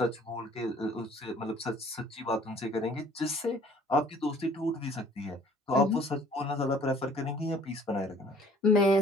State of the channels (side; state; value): both; normal; correlation 0.54